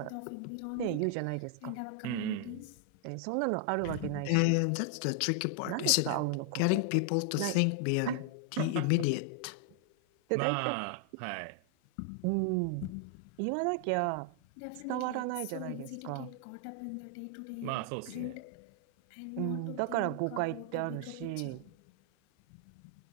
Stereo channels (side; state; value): both; different; correlation 0.00